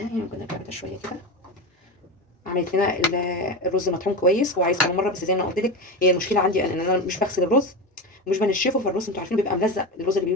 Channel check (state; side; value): normal; both; correlation 0.22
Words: يعني، ممكن نرجع ده شويه كده. عملت لنا الرز مطحون كويس، هو عايز كمان مره، بس زي ما قلت لك هي المشكله عندي ان انا مش بغسل الرز ومش بنشفه، فالرز انتوا عارفين بيبقى ملزق، الرز